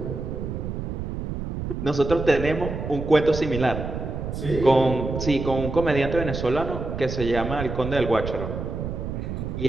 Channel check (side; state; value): right; noise; rumble, 5 dB below the sound